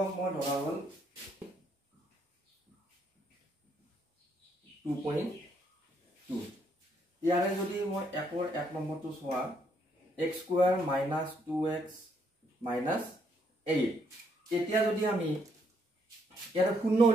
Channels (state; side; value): normal; both; correlation 0.72